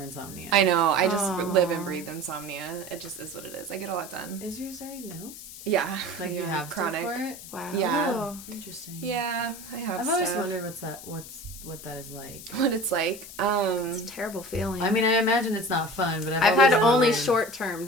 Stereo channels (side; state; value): left; noise; hiss, 14 dB below the sound